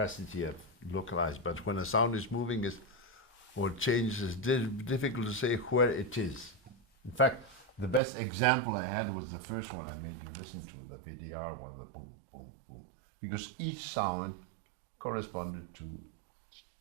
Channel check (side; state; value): left; drops out; at 8.0 s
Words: of localized. But when a sound is moving, or changes, it's difficult to say where it is. In fact, the best example I had was the first one I made you listen to, the VDR one, the boom, boom, boom. Because each sound corresponded to